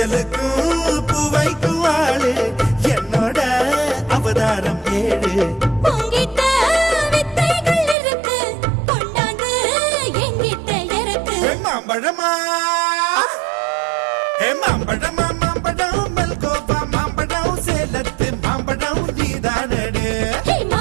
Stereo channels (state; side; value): drops out; left; at 8.0 s